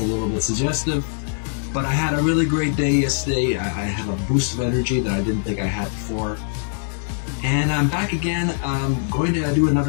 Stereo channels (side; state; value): right; silent; 64 dB below the other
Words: little bit suggestive. But I had a really great day yesterday. I had a boost of energy that I didn't think I had before. And I'm back again. I'm going to do